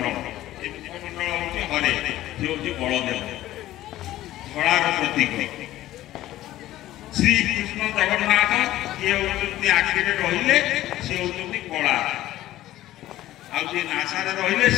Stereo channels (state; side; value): quieter; right; 14.8 dB